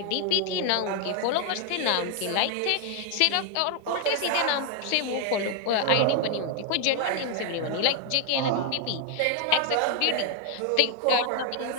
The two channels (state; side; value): different; both; correlation 0.00